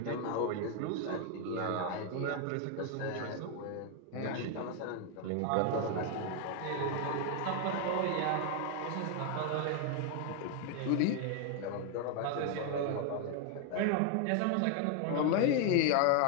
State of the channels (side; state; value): both; different; correlation 0.01